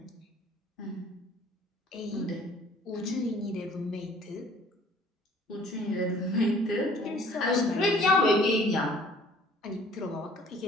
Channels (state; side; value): normal; both; correlation 0.54